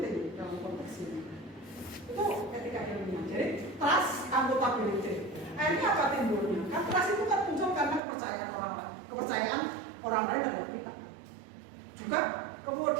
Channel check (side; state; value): left; drops out; at 8.0 s